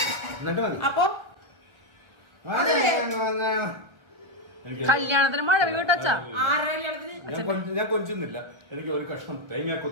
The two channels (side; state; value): left; late; 1.6 ms